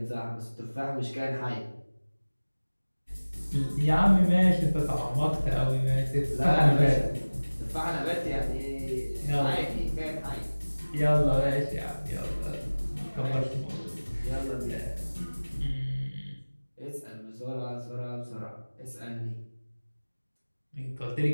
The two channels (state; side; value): inverted; both; correlation -1.00